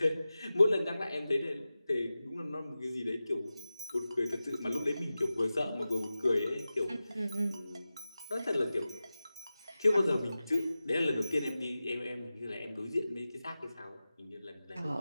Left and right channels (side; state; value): both; inverted; correlation -0.94